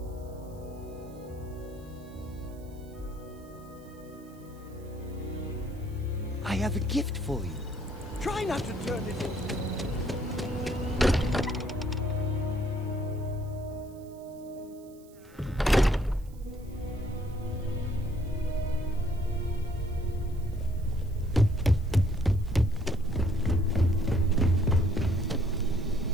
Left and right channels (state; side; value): noise; right; hiss, 28 dB below the sound